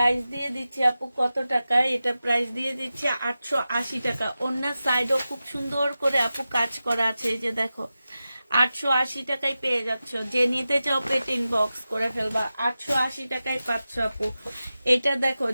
দিয়ে দিচ্ছি আপু কত টাকা, এটা প্রাইস দিয়ে দিচ্ছি 880 টাকা। ওড়নার সাইডও খুব সুন্দর করে আপু কাজ করা আছে, এই যে দেখো 880 টাকায় পেয়ে যাচ্ছ। যে নিতে চাও পেট ইনবক্স করে ফেলবা, 880 টাকায় পাচ্ছ আপু। এটা দেখো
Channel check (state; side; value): inverted; both; correlation -0.93